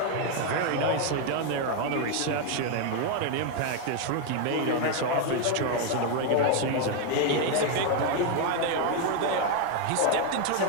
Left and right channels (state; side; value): different; both; correlation 0.01